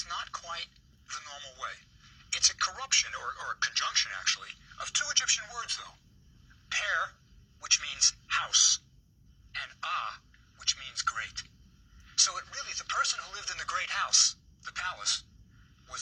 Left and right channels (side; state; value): both; identical; correlation 1.00